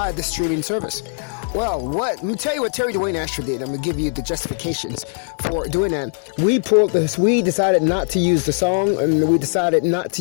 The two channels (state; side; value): silent; right; 57 dB below the other